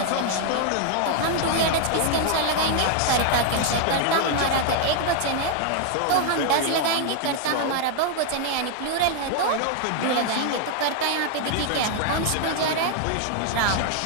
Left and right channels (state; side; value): different; both; correlation 0.00